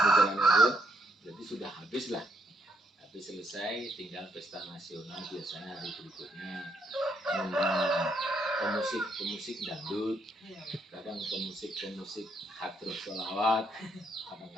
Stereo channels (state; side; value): normal; both; correlation 0.74